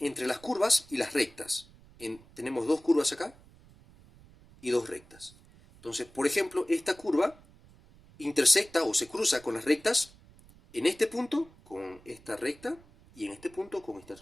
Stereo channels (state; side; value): noise; right; rumble, 25 dB below the sound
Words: las curvas y las rectas. Tenemos dos curvas acá y dos rectas. Entonces, por ejemplo, esta curva intersecta o se cruza con las rectas en este punto con esta recta y en este punto con esta